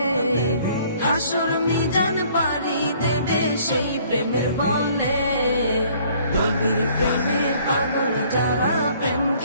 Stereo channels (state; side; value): inverted; both; correlation -0.58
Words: হাসর মিজান পারি দেবে সেই প্রেমের বলে। নবীর প্রেমে পাগল যারা প্রেম